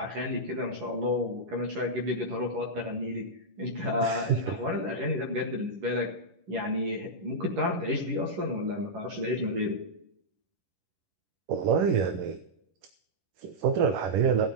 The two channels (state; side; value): late; left; 11 ms